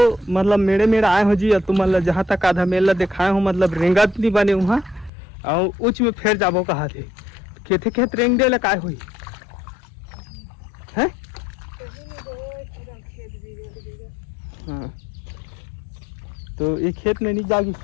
मतलब मेरे आए हो जी और तुम मतलब जहाँ तक आधा मेला दिखाए हो मतलब रेंगत नहीं बने वहाँ और उच में फिर जाबो कहा थे खेते खेत रेंग दे लकाय हुई है। हाँ तो एक खेत में नहीं जागी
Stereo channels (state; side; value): drops out; right; at 5.1 s